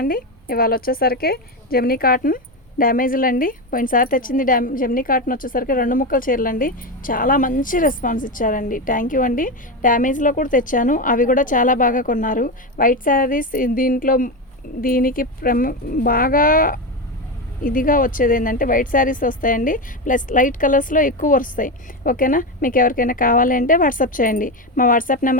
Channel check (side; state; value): both; normal; correlation 0.15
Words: అండి. ఇవాళ వచ్చేసరికి జెమినీ కాటన్ డ్యామేజ్లు అండి. పోయినసారి తెచ్చింది జెమినీ కాటన్ వచ్చేసరికి 2 ముక్కల చీరలు అండి. చాలా మంచి రెస్పాన్స్ ఇచ్చారండి. థ్యాంక్ యూ అండి. డ్యామేజ్లో కూడా తెచ్చాను, అవి కూడా చాలా బాగా కొన్నారు. వైట్ శారీస్ దీనికి బాగా ఇదిగా వచ్చేది ఏంటంటే వైట్ శారీస్ వస్తాయండి, ప్లస్ లైట్ కలర్స్లో ఎక్కువ వస్తాయి. ఓకేనా, మీకు ఎవరికైనా కావాలి అంటే వాట్సాప్ చేయండి. మా వాట్సాప్